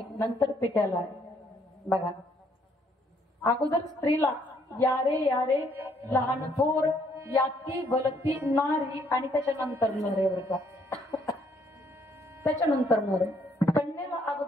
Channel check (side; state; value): both; normal; correlation 0.68